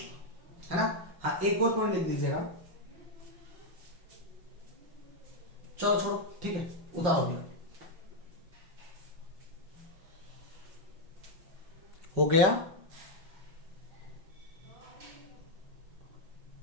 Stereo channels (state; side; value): late; left; 5.3 ms